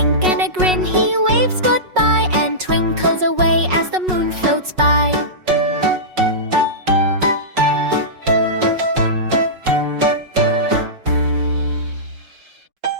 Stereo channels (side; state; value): left; late; 5.4 ms